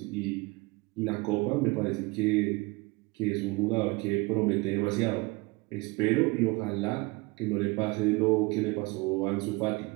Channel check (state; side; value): quieter; left; 25.2 dB